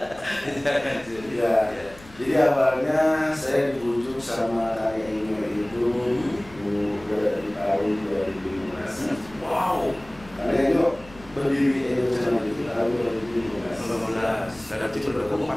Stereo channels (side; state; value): left; noise; rumble, 21 dB below the sound